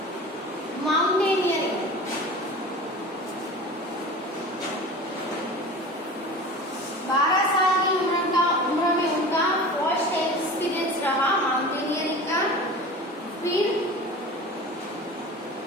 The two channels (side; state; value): both; normal; correlation 0.36